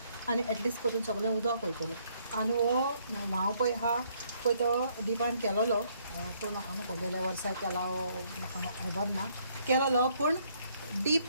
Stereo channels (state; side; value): inverted; both; correlation -0.68